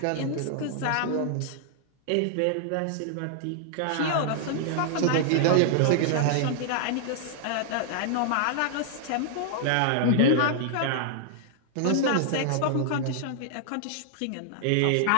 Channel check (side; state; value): both; different; correlation -0.01